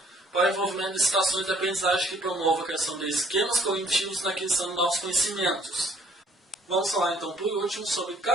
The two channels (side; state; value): both; normal; correlation 0.61